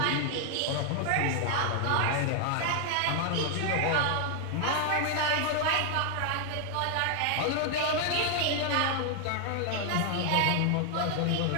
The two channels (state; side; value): different; both; correlation 0.00